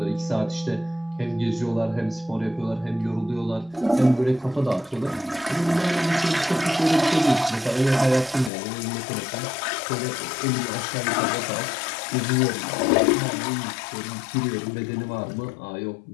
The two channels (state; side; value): drops out; right; at 8.5 s